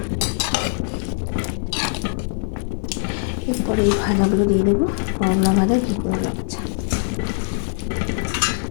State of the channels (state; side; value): silent; right; 58 dB below the other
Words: এরপরে এই ভাজাগুলো দিয়ে দেবো, করলা ভাজা, ঘি করলা ভাজা।